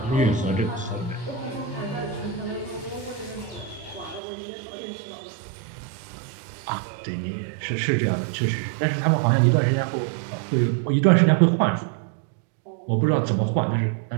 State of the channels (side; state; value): left; drops out; at 4.2 s